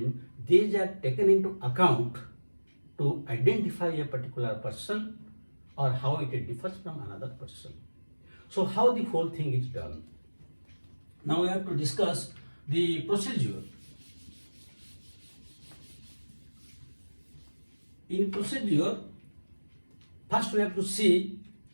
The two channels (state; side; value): inverted; both; correlation -1.00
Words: these are taken into account to identify a particular person or how it differs from another person. So how the whole thing is done. Now we have to discuss the procedure. In procedure, first we have to see